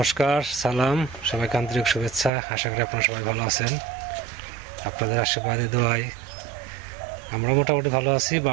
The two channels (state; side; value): drops out; left; at 2.3 s